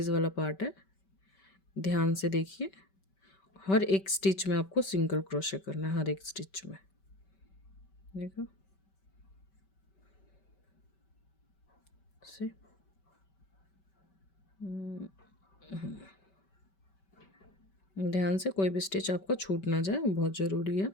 वाला पार्ट है, ध्यान से देखिए, हर एक स्टिच में आपको सिंगल क्रोशे करना है, हर एक स्टिच में, देखो से। ध्यान से, कोई भी स्टिच आपका छूट ना जाए, बहुत ज़रूरी है,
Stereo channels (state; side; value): late; right; 5.2 ms